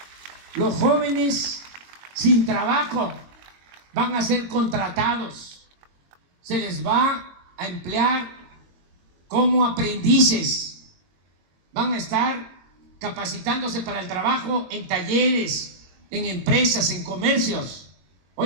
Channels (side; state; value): left; late; 22 ms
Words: Los jóvenes sin trabajo van a ser contratados, se les va a emplear como aprendices, van a estar capacitándose para el trabajo en talleres, en empresas, en comercios.